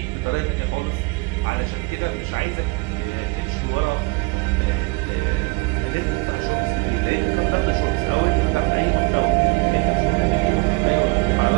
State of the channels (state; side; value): quieter; left; 27.3 dB